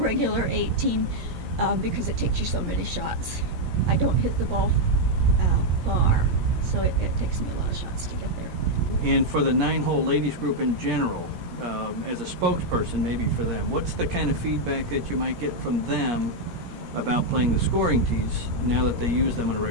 18 because it takes you so many shots. I don't hit the ball far, so it takes me a lot of shots to get there. And for the 9-hole ladies group in general, as a spokesperson maybe for them, what's the kind of feedback that you might get from them about playing the scoring tees now that they use them on a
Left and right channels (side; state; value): left; late; 17 ms